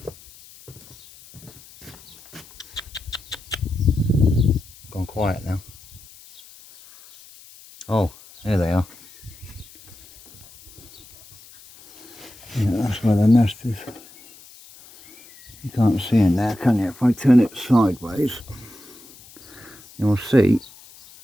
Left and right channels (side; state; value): left; noise; hiss, 22 dB below the sound